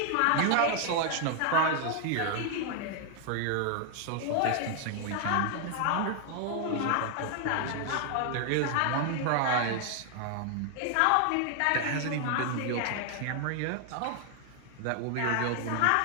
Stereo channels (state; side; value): different; both; correlation 0.00